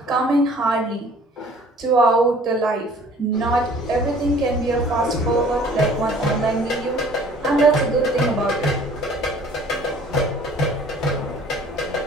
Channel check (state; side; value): normal; both; correlation 0.52